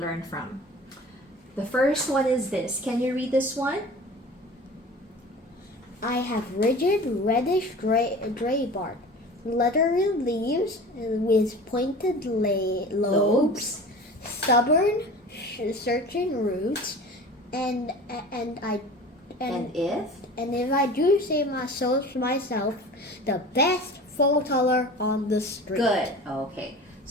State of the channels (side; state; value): both; normal; correlation 0.39